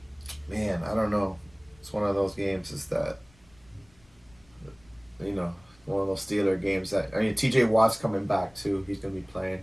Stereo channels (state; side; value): noise; left; rumble, 29 dB below the sound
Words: man, I don't know. It's one of those games. Is that one of those Steeler games that T.J. Watt's coming back too. He's gonna be playing.